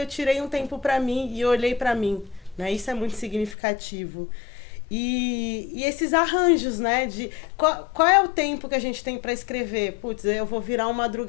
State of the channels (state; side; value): drops out; right; at 3.6 s